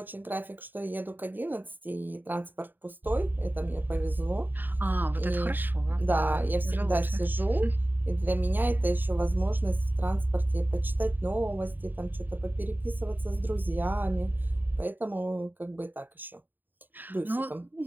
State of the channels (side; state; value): left; late; 0.091 ms